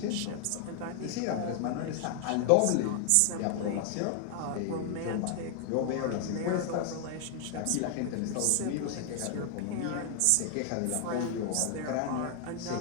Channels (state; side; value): different; both; correlation 0.00